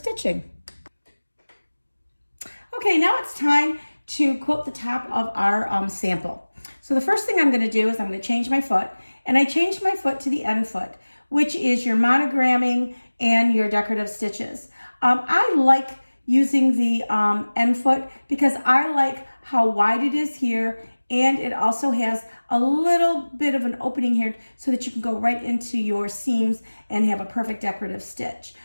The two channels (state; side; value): inverted; both; correlation -1.00